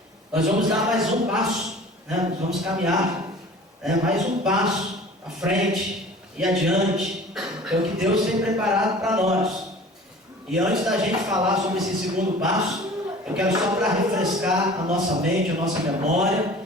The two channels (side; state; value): both; normal; correlation 0.44